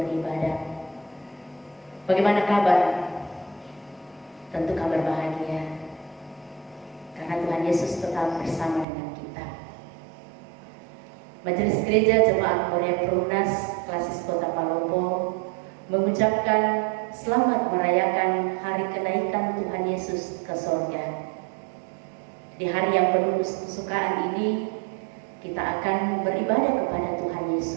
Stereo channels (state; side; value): drops out; left; at 8.8 s